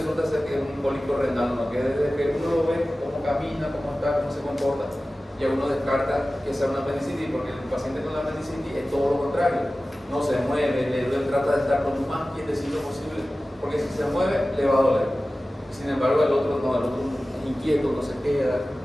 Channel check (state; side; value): normal; both; correlation 0.96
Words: ser que es un cólico renal, ¿no? Que desde que uno lo ve, cómo camina, cómo está, cómo se comporta, ya uno descarta que sea una apendicitis, porque el paciente con la apendicitis es todo lo contrario. No se mueve, le duele, trata de estar lo más quietecito posible, porque si se mueve, le va a doler. Sin embargo, el otro no, el otro inquieto, no se queda.